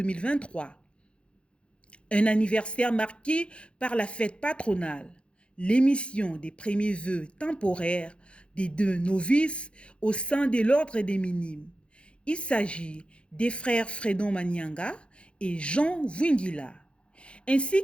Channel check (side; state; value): right; late; 0.058 ms